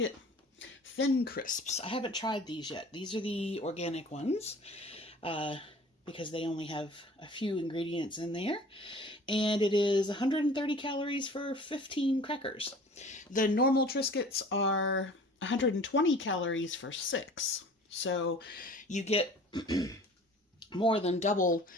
Thin crisps. I haven't tried these yet. These are the organic ones because they only have a few ingredients in there. And it is 130 calories for 15 crackers. The normal Triscuits are 120 calories for 6. So you get more than double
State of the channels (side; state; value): both; normal; correlation 0.46